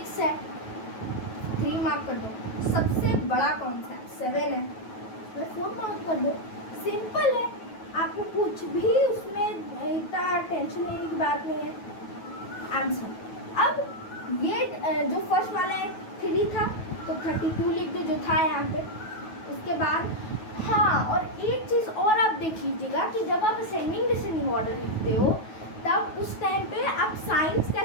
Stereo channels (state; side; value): late; right; 9.3 ms